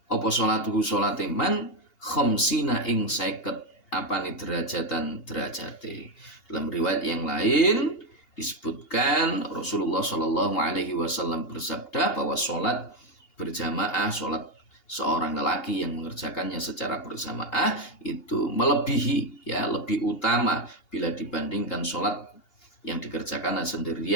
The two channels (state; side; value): late; right; 2.8 ms